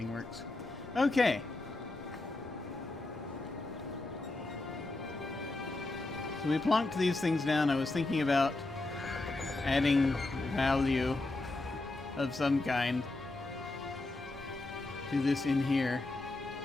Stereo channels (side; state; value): right; quieter; 3.0 dB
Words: works. Okay. So we plonked these things down. I was thinking about adding value of some kind to this in here.